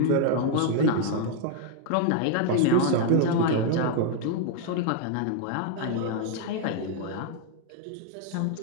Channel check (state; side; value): different; both; correlation 0.00